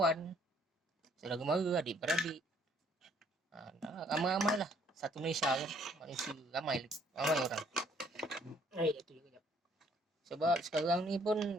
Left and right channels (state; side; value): normal; both; correlation 0.63